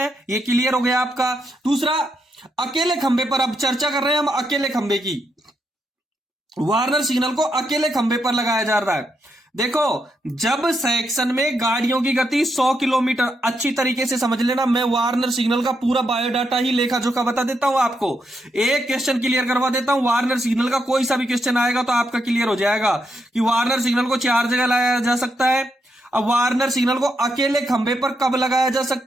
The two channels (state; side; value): normal; both; correlation 0.81